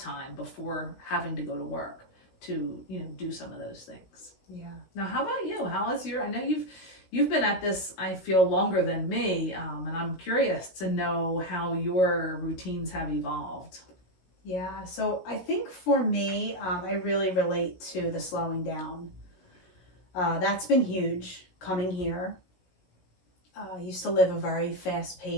before having to go to work to, do some of those things. Yeah. Now, how about you? How is I know you've been at this, I feel, longer than me, and I'm curious to know how your routines have evolved. Yeah. So I think for me, I really relate to the slowing down. That's been huge coming here. I used to live a very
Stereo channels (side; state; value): right; late; 16 ms